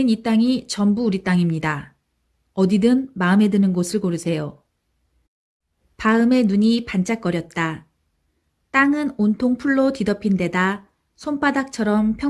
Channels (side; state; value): both; identical; correlation 1.00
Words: 이 땅이 전부 우리 땅입니다. 어디든 마음에 드는 곳을 고르세요. 바음의 눈이 반짝거렸다. 땅은 온통 풀로 뒤덮인 데다 손바닥처럼